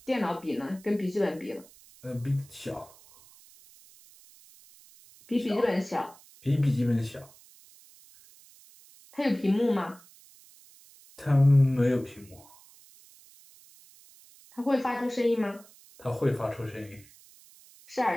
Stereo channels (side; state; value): right; noise; hiss, 25 dB below the sound